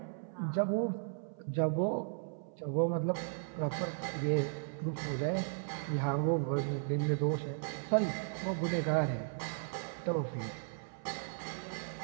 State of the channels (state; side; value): silent; left; 54 dB below the other